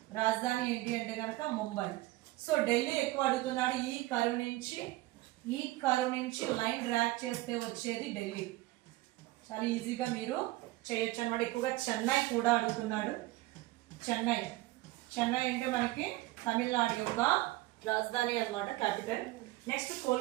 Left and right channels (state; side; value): quieter; left; 18.9 dB